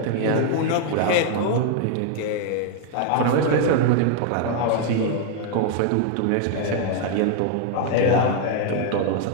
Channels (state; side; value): different; both; correlation 0.00